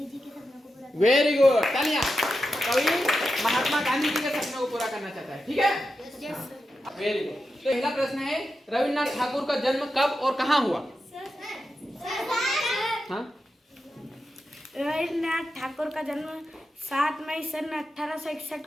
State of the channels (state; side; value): normal; both; correlation 0.89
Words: जी के सपनों को पूरा। वेरी गुड, तालियां। कवि महात्मा गांधी जी के सपनों को पूरा करना चाहता है। ठीक है, वेरी गुड। तो पहला प्रश्न है, रविन्द्रनाथ ठाकुर का जन्म कब और कहाँ हुआ? हाँ? रविन्द्रनाथ ठाकुर का जन्म 7 मई सन 1861